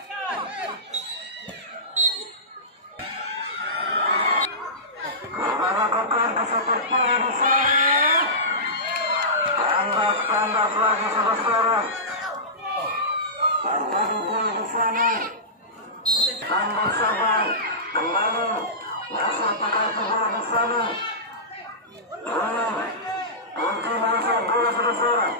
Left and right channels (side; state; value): both; normal; correlation -0.19